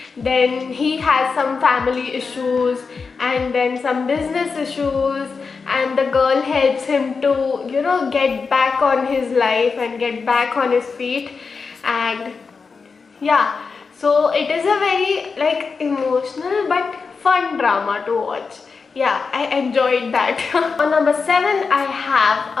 then he has some family issues and then some business issues, and the girl helps him to get back on his life and get back on his feet. And yeah, so it is a very like emotional but fun drama to watch. Yeah, I enjoyed that. On number 7 I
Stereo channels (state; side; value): quieter; right; 4.9 dB